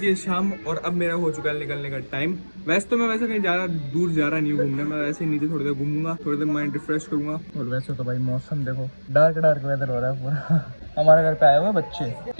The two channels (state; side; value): inverted; both; correlation -1.00